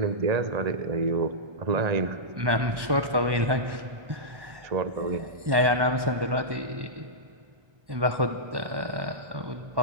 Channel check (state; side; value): late; left; 1.1 ms